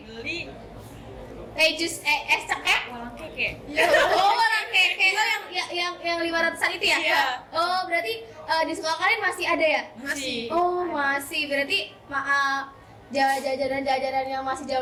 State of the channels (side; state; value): both; identical; correlation 1.00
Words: Beli Jus es cekek? walang keke. Oh, orang keke. Oh, yang 500-an itu ya? Iya. Oh, berarti di sekolah kalian masih ada ya? Masih. Oh, masih. Berarti jajanan yang masih